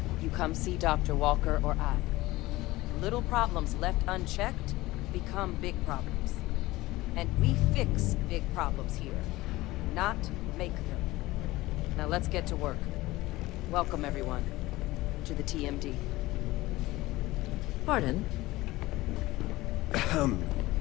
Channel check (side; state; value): right; quieter; 18.8 dB